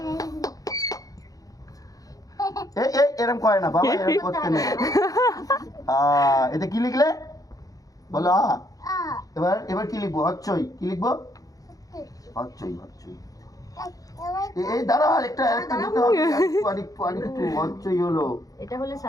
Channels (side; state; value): right; late; 0.17 ms